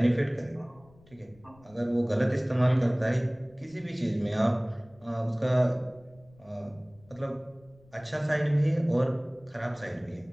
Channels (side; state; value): left; noise; rumble, 27 dB below the sound